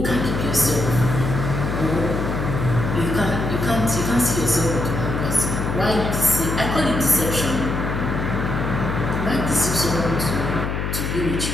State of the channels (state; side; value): noise; left; hum, 2 dB below the sound